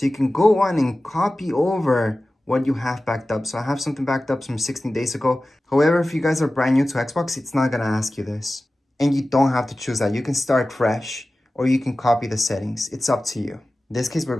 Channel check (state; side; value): normal; both; correlation 0.96